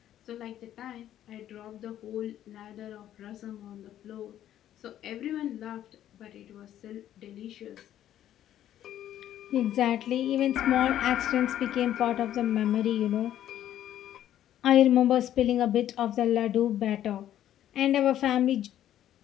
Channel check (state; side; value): quieter; right; 11.7 dB